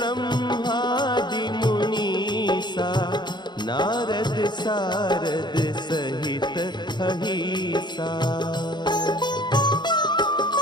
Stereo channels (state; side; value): late; right; 0.21 ms